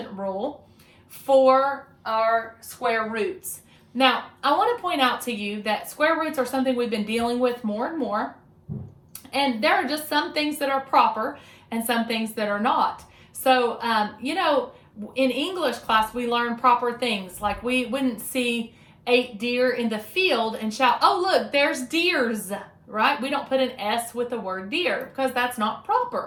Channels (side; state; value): both; identical; correlation 1.00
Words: rule for our square roots. Now, I want to point out to you that square roots are something we've been dealing with more and more. And there are just some things that are proper and some things that are not. So, in English class, we learn proper things. Like we wouldn't see 8 deer in the field and shout, oh, look, there's deers, right? We don't put an S with the word deer because that's not